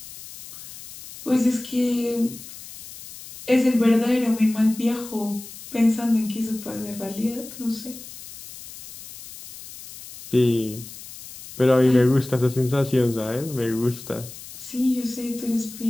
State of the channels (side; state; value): left; noise; hiss, 15 dB below the sound